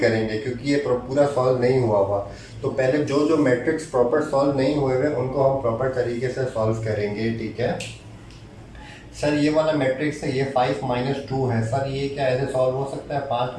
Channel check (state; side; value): identical; both; correlation 1.00